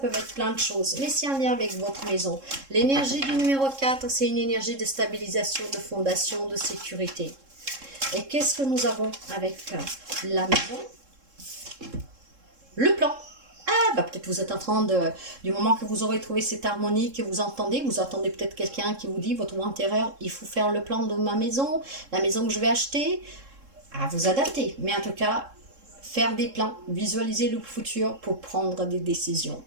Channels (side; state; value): left; late; 3.7 ms